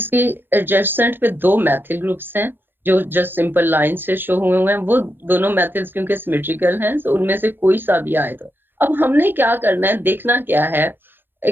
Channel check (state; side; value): late; left; 0.099 ms